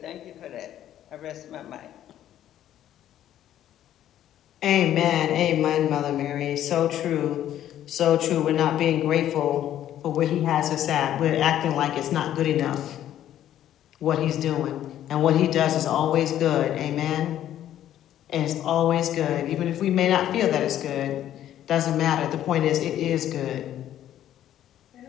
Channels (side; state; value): right; quieter; 11.7 dB